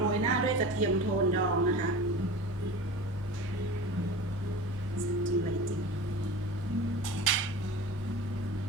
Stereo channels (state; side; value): normal; both; correlation 0.34